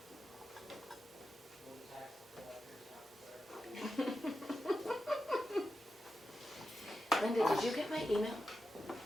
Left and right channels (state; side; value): normal; both; correlation 0.90